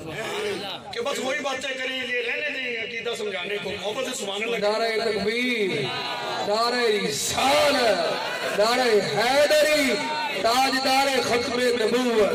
کہ بس وہی باتیں کریں، یہ رہنے دیں عقیدہ سمجھانے کو، محبت سے سبحان اللہ۔ نعرہ تکبیر، نعرہ رسالت، نعرہ حیدری، تاجدار ختم نبوت۔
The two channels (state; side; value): identical; both; correlation 1.00